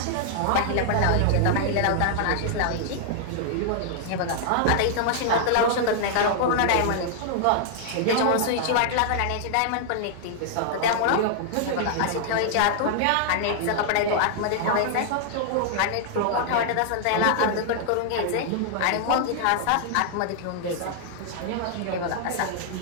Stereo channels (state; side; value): different; both; correlation -0.01